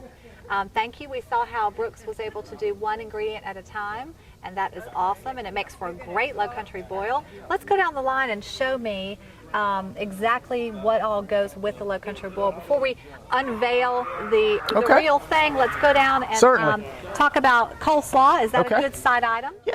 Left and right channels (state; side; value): identical; both; correlation 1.00